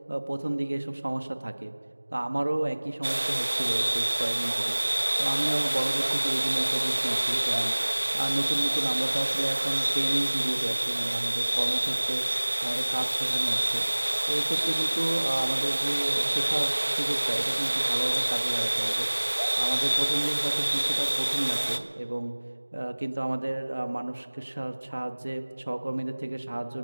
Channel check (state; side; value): inverted; both; correlation -1.00